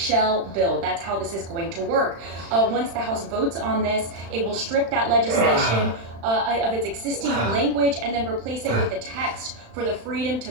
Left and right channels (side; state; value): left; late; 35 ms